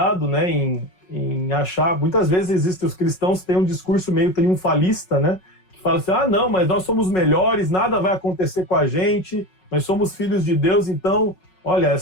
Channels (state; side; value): late; right; 5.4 ms